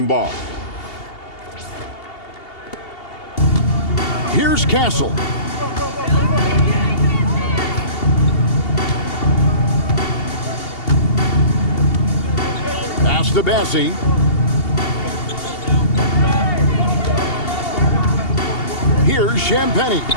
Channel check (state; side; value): late; right; 2.8 ms